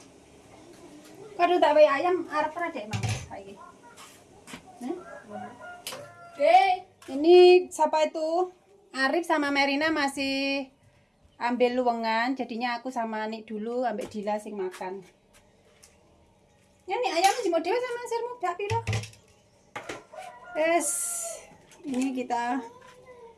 Kado tak wae ayam arep ra dek Mang saiki. Ini siapa itu? Arif sama Merina masih ambil luwengan, jadinya aku sama Nik dulu ambil Dila sing makan. Ya nih ayam jemur dhewe sama sirmu dak piro? Ini kita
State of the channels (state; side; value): identical; both; correlation 1.00